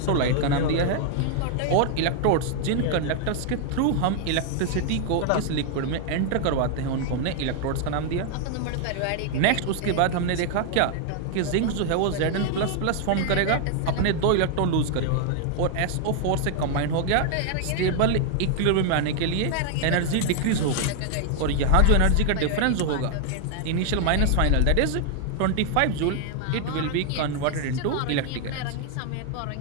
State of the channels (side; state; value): both; different; correlation 0.00